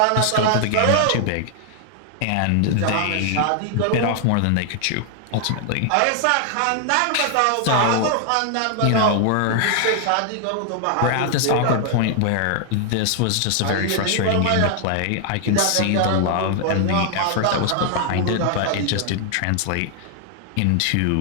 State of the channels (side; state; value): both; different; correlation 0.00